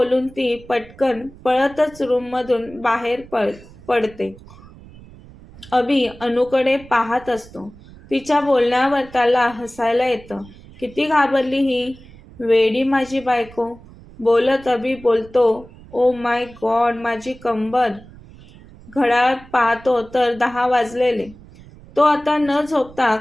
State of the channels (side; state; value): right; noise; rumble, 21 dB below the sound